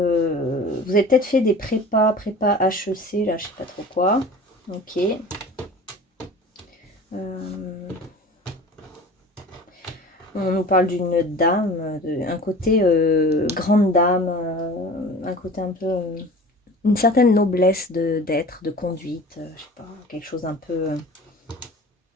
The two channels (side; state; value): both; normal; correlation 0.40